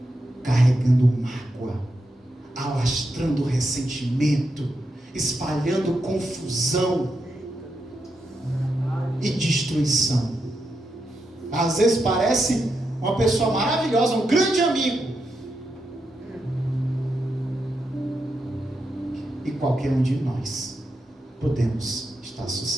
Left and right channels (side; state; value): both; normal; correlation 0.84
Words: carregando mágoa, alastrando ressentimento, espalhando confusão e destruição. Às vezes parece uma pessoa maravilhosa, um grande amigo, e qualquer um de nós podemos estar